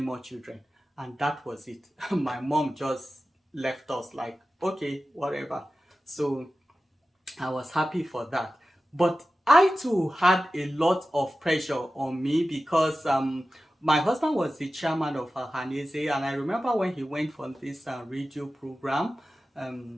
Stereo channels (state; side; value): normal; both; correlation 0.94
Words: children. And that was it. My mom just left us like, okay, whatever. So I was happy for that. But I too had a lot of pressure on me because my husband was the chairman of Hanese, and I remember when he went for this radio program